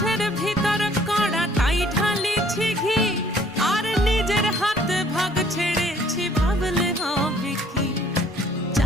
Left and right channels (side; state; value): both; normal; correlation 0.59